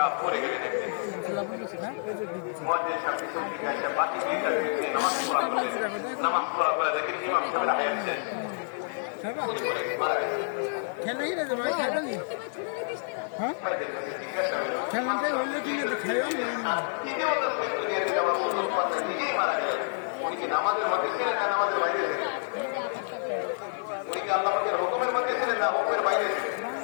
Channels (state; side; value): silent; right; digital silence